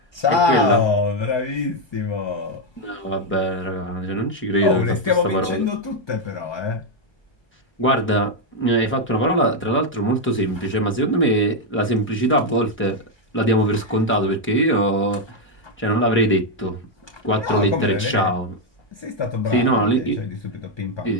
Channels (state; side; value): normal; both; correlation 0.02